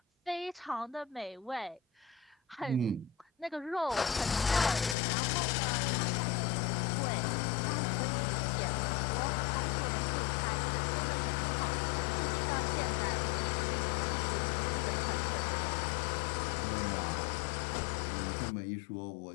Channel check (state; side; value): drops out; right; at 5.0 s